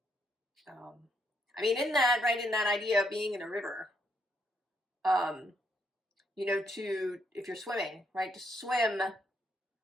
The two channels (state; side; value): normal; both; correlation 0.74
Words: In that idea of being in a river, if you're swimming, right, to swim